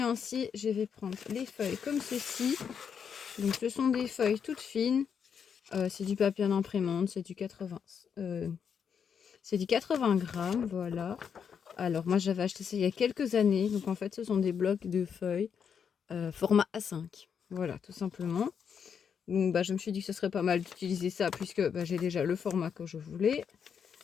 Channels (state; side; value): quieter; right; 7.2 dB